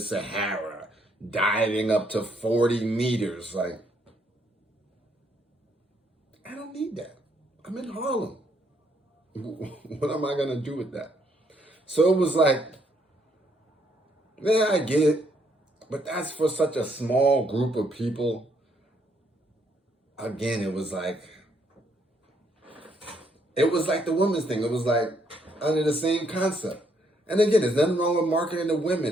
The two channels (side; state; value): both; normal; correlation 0.71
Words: diving up to 40 meters. Like, I don't need that. I'm in Harlem. What am I going to do with that? So it was like, yeah, I get it. But that's for such a small group of people. Again, it was like the women's thing. It was like under the same concept. And again, there's nothing wrong with marketing to